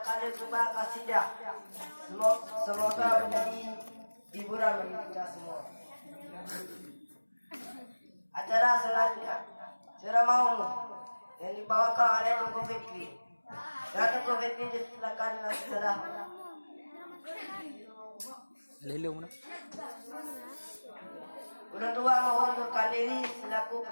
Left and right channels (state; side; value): inverted; both; correlation -1.00